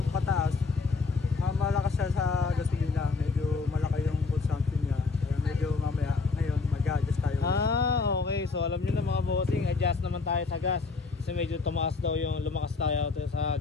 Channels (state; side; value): quieter; right; 4.4 dB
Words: pataas, malakas siya sa gasolina. Medyo malaki yung consumption niya. Kaya medyo mamaya ngayon mag-adjust tayo. Okay. So alam niyo na mga bossing, adjust naman tayo sa gas. Kasi medyo lumakas tayo sa